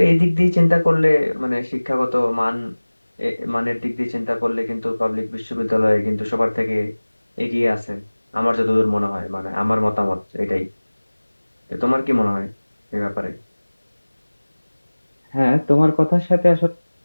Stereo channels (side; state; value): both; inverted; correlation -1.00